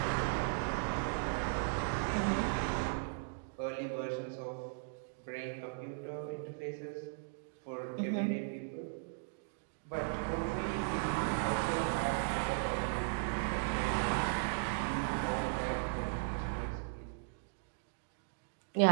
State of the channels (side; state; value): left; silent; digital silence